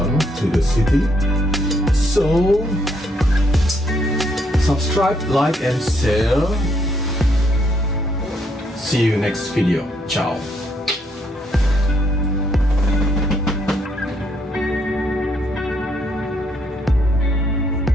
to the city. So subscribe, like and share. See you next video. Ciao.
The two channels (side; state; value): both; normal; correlation 0.72